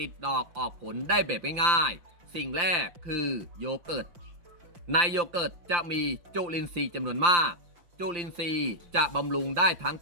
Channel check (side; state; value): left; late; 5.8 ms